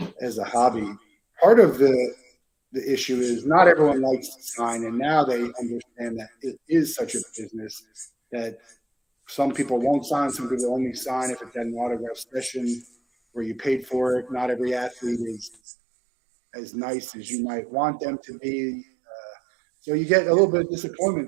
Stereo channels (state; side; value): drops out; left; at 15.5 s